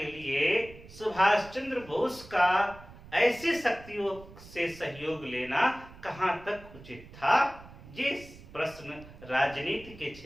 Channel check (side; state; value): right; noise; rumble, 19 dB below the sound